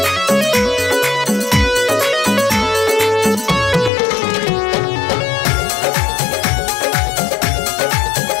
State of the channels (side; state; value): right; drops out; at 3.9 s